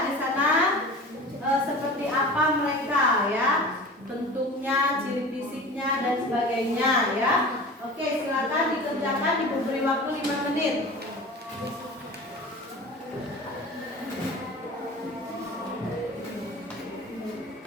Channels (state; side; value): normal; both; correlation 0.37